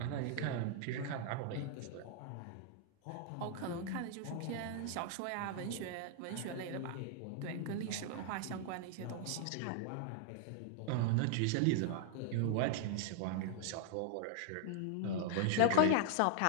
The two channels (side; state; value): both; different; correlation 0.00